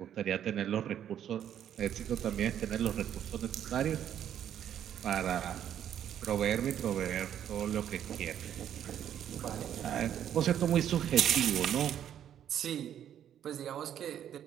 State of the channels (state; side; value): quieter; left; 10.0 dB